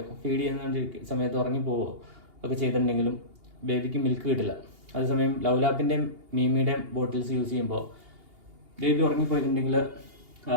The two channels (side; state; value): left; late; 2.8 ms